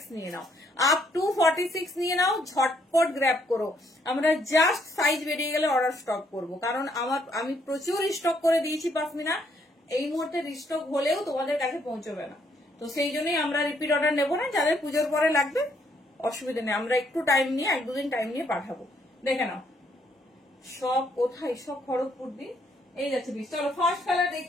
নিয়ে নাও, ঝটপট গ্র্যাব করো। আমরা জাস্ট সাইজ বেরিয়ে গেলে অর্ডার স্টপ করবো, কারণ আমি প্রচুর স্টক করে দিয়েছি পাশমিনা, এই মুহূর্তে রিস্টক হলেও তোমাদের কাছে পৌঁছবে না। তো সেই জন্যই আমরা রিপিট অর্ডার নেবো না, যাদের পুজোর পরে লাগবে অসুবিধা নেই, আমরা একটু টাইম নিয়ে 1-2 দিন টাইম নিয়ে পাঠাবো। দেখে নাও সব কোথায়, সব খড়গপুর দিন। এই যাচ্ছে পিস। চলো ফার্স্ট কালার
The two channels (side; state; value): both; normal; correlation 0.70